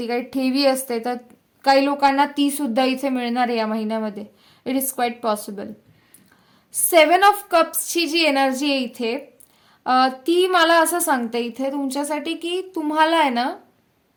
काही ठेवी असते, तर काही लोकांना ती सुद्धा इथे मिळणार आहे या महिन्यामध्ये. It is quite possible. 7 of कप्सची जी एनर्जी आहे इथे, ती मला असं सांगते इथे तुमच्यासाठी की तुम्हाला आहे ना,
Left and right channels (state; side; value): identical; both; correlation 1.00